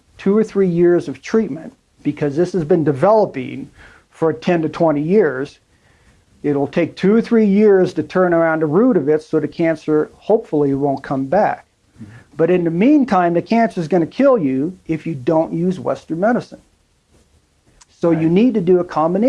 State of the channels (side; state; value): both; identical; correlation 1.00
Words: 2 or 3 years of treatment, because this has been developing for 10 to 20 years, it'll take 2 or 3 years to turn around the root of it so the cancer hopefully won't come back. But in the meantime, the cancer is going to kill you if you don't use Western medicine. So you need to do a